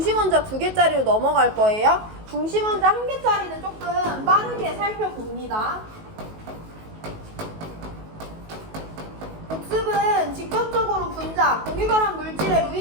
2개짜리로 넘어갈 거예요. 중심원자 1개짜리는 조금 빠르게 살펴봅니다. 복습은 직접적으로 분자, 공유결합 물질의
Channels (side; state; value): left; late; 19 ms